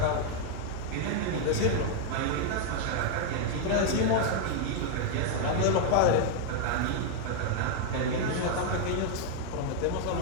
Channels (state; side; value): different; both; correlation 0.00